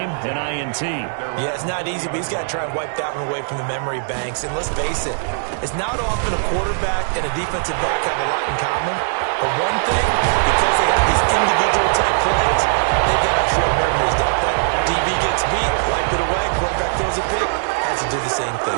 an INT. Yeah, it's not easy, but he's got to try and wipe that one away from the memory banks. And let's face it, it's not often a quarterback and a defensive back have a lot in common. But one thing, because they have these individual type plays, they've got short memories, don't they? DB gets beat, wipe it away, quarterback throws a pick, has to do the same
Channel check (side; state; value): left; silent; digital silence